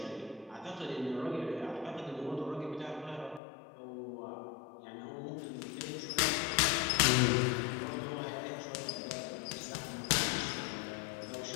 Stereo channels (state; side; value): drops out; right; at 3.4 s